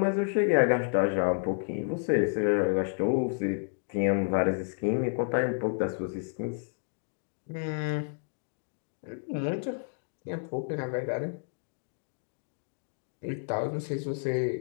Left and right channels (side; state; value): right; silent; digital silence